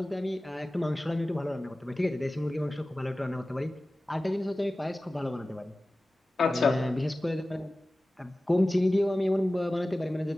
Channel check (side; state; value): both; normal; correlation 0.96